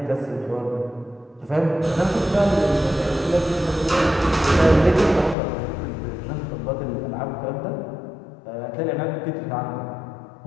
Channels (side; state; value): right; drops out; at 5.4 s